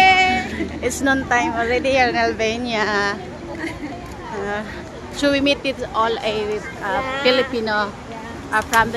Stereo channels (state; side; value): identical; both; correlation 1.00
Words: It's noon time already here in Albania. So we meet with all a Filipino from